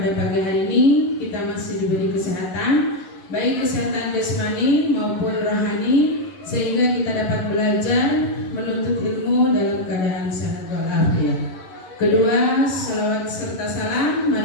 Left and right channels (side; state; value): right; late; 11 ms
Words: pagi hari ini kita masih diberi kesehatan, baik kesehatan jasmani maupun rohani, sehingga kita dapat belajar menuntut ilmu dalam keadaan sehat walafiat. Kedua, salawat serta salam